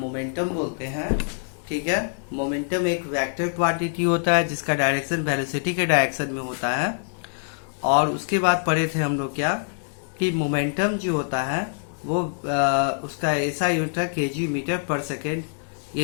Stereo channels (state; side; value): silent; right; digital silence